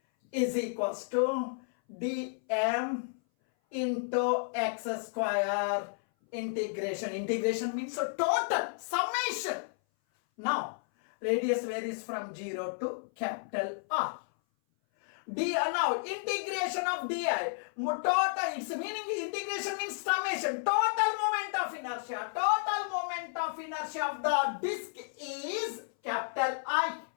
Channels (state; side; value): silent; right; 56 dB below the other